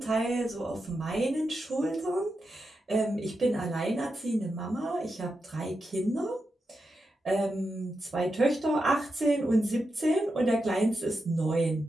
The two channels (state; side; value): normal; both; correlation 0.88